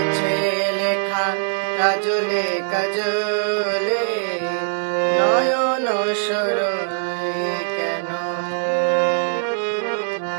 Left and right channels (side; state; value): left; silent; 59 dB below the other